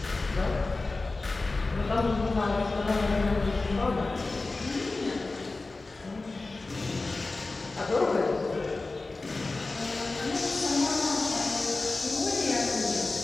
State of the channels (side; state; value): right; quieter; 3.4 dB